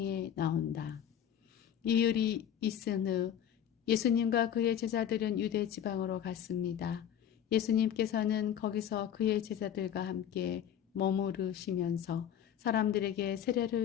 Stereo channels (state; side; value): quieter; right; 9.6 dB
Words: 나온다. 이율이 있은 후 예수님과 그의 제자들은 유대 지방으로 갔습니다. 예수님께서는 거기서 그의 제자들과 함께 머무르시면서 사람들에게